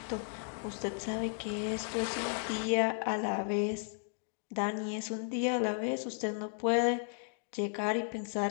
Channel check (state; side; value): silent; right; 55 dB below the other